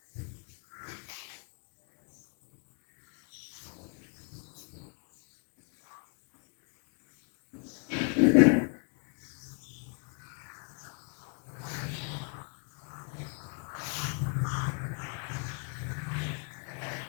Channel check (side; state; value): right; quieter; 37.5 dB